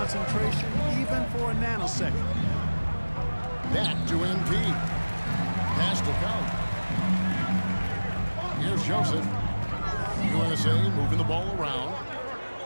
even for a nanosecond. Back to MP. Pass to Count. Here's Joseph. USA moving the ball around.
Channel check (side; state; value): both; inverted; correlation -1.00